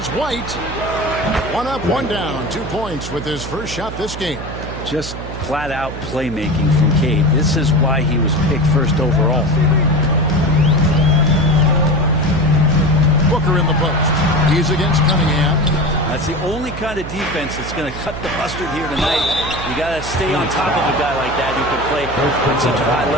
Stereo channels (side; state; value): right; noise; hum, 10 dB below the sound